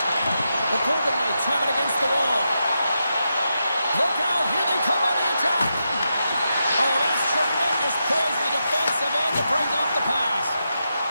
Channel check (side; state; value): both; inverted; correlation -0.86